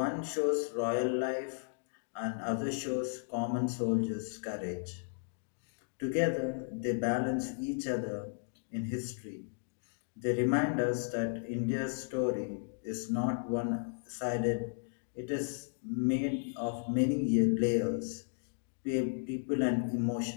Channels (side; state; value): right; silent; digital silence